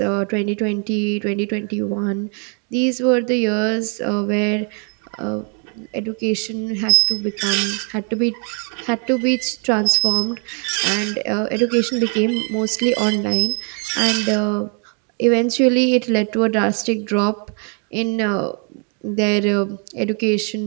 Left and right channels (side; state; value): left; quieter; 38.8 dB